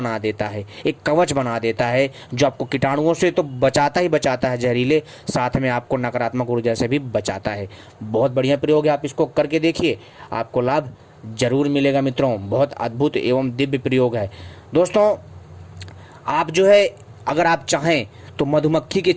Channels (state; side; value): identical; both; correlation 1.00